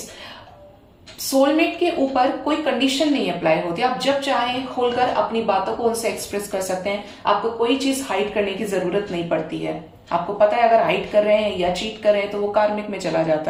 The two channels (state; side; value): identical; both; correlation 1.00